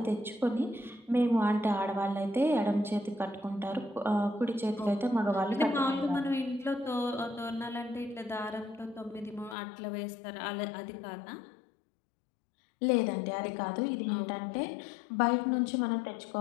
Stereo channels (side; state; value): right; drops out; at 9.6 s